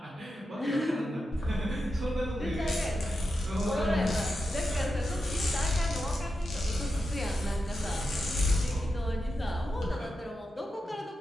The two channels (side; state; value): both; normal; correlation 0.89